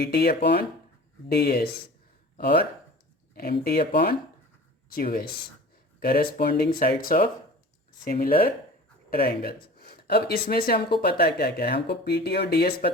T upon D S और M T upon Q S, corresponding sides of similar triangles. अब इसमें से हमको पता है क्या क्या है, हमको पी टी और डी एस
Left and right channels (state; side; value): normal; both; correlation 0.40